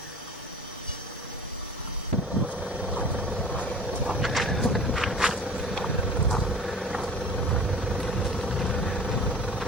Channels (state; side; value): normal; both; correlation 0.42